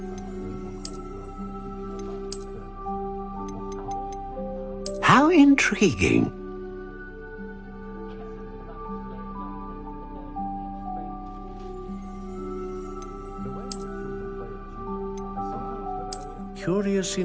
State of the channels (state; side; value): identical; both; correlation 1.00